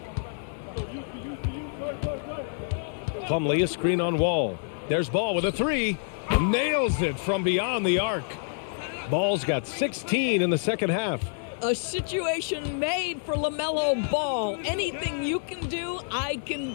Plumlee, a screen on Wall. There's Ball with a 3. Nails it from beyond the arc. Ball's got 16 in the second half. A situation made for LaMelo Ball. Anything you can do, I can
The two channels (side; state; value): right; silent; digital silence